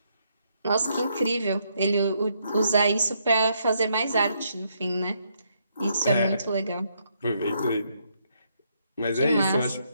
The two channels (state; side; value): inverted; both; correlation -0.75